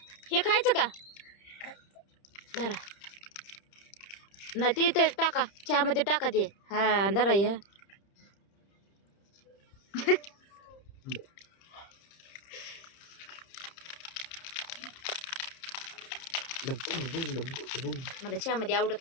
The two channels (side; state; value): right; late; 30 ms